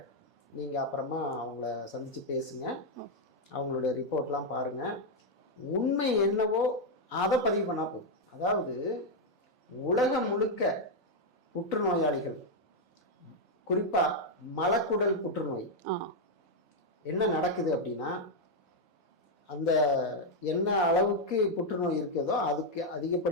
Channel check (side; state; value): both; normal; correlation 0.00